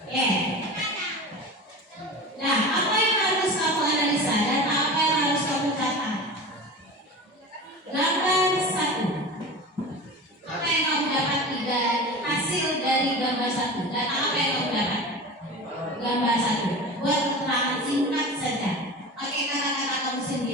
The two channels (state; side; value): normal; both; correlation 0.32